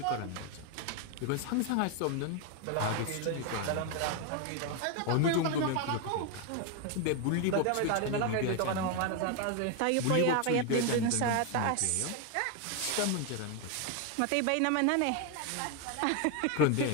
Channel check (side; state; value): both; different; correlation 0.01